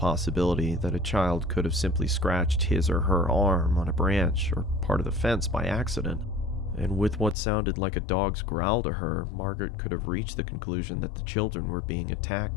that a child could have simply scratched his or her arm on a branch or part of the fence by accident. And with what sounded like a dog's growl to her, Margaret could have reached the conclusion that the children were being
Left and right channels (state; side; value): drops out; right; at 7.4 s